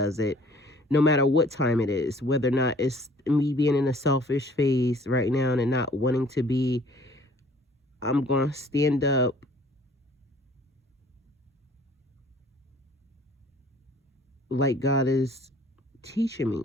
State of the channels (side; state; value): both; normal; correlation 0.54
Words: it, no matter what time it is, whether or not it's me being in a selfish phase right now and not wanting to be, I'm going to stand up like God is teaching me.